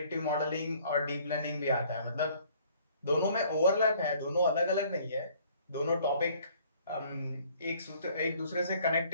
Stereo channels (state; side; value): inverted; both; correlation -0.58